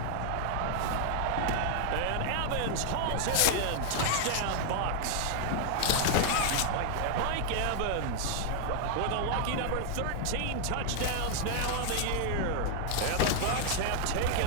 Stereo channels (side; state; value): both; different; correlation 0.00